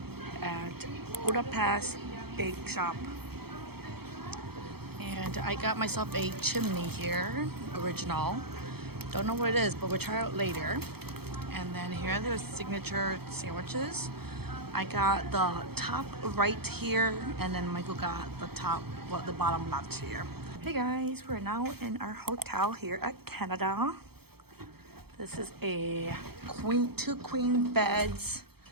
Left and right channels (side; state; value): left; late; 0.96 ms